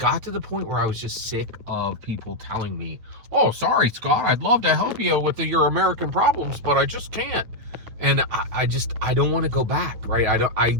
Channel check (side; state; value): left; late; 9.2 ms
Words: to the point where I was just sick of people telling me, oh, sorry, Scott, I'd love to help you with your American problems, but I just can't. And I don't want to go back, right?